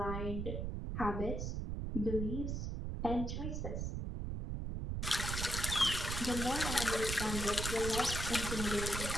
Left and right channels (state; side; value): noise; right; rumble, 2 dB below the sound